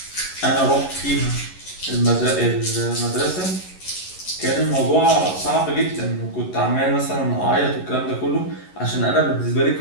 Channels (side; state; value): right; late; 11 ms